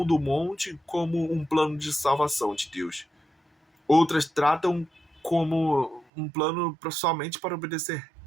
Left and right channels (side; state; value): left; drops out; at 6.1 s